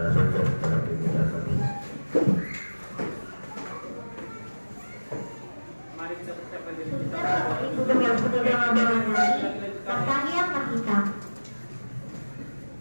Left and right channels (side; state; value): both; inverted; correlation -1.00